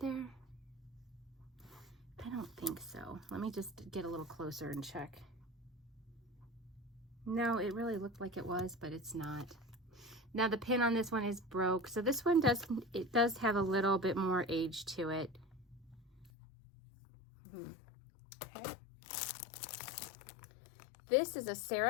I don't think so. Let me just get a little closer and check. No, it really looked like it was, but it's not. Now the pin on this one is broke, so this one does have a little bit more age to it. Okay. This is a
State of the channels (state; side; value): drops out; right; at 16.3 s